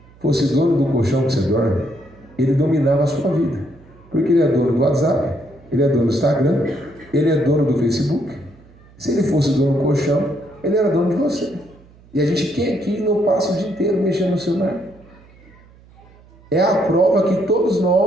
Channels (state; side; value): noise; right; hum, 26 dB below the sound